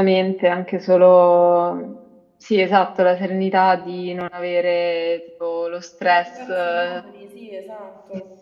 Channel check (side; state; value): both; identical; correlation 1.00